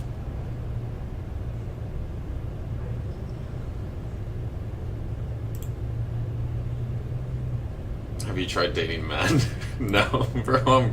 Have you tried dating men? No, bro, I'm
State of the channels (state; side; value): identical; both; correlation 1.00